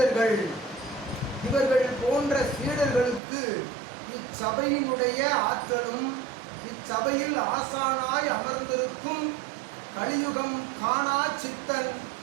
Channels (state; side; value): drops out; left; at 3.2 s